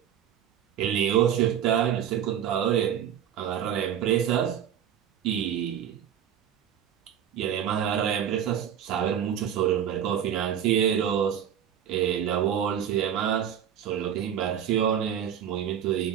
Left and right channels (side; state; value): left; quieter; 9.5 dB